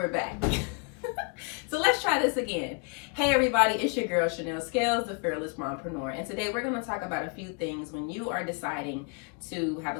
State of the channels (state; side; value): quieter; right; 33.4 dB